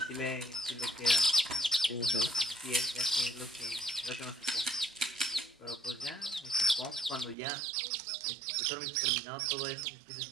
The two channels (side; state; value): left; drops out; at 7.4 s